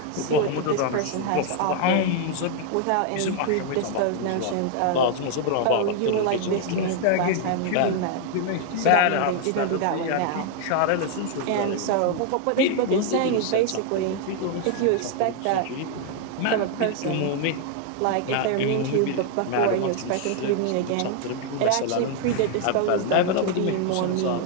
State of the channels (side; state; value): both; different; correlation 0.00